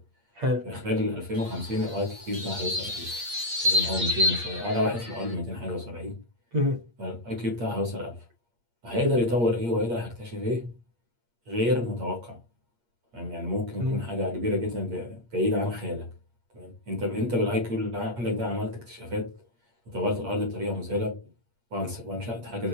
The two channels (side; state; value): left; late; 8.5 ms